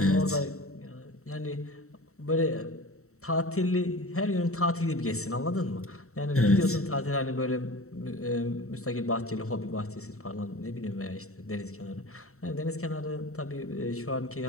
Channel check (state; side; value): late; right; 0.64 ms